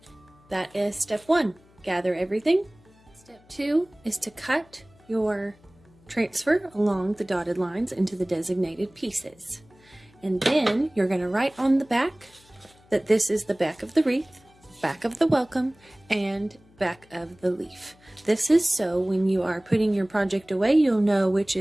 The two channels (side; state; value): left; noise; hum, 29 dB below the sound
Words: That is step 1. Gather everything. Step 2 is to cut your transfer along the dotted lines into the designated pieces. And then you're going to write on the back that this is the back of the wreath, back of the welcome, and back of the leaf. This is so when you are putting your project away, you'll know which